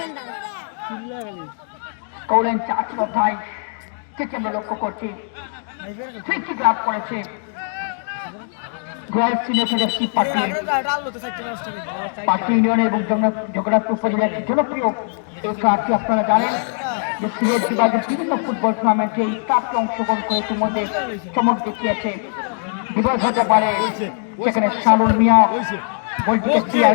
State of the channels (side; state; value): right; silent; 61 dB below the other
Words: কৌরান চা ছিল তাই থেকে আমরা লক্ষ্য করছি ফ্রি লাভ করেছে রয়্যাল সিলেটের একটি পার্টি ইউনিয়ন এবং জগন্নাথপুর উপজেলার জনপ্রিয় এই ক্লাবটি আপনারা জানেন যে সিলেট বিভাগের বিভিন্ন ফুটবল টুর্নামেন্টে এই ক্লাবকে অংশগ্রহণ করে ইতিমধ্যে চমক দেখিয়েছে। বিভাগ হতে পারে সেখানে শানুর মিয়া বলটিকে ক্লিয়ার